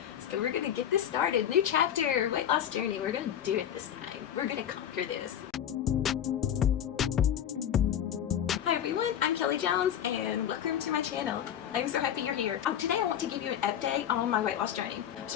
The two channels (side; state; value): right; quieter; 9.8 dB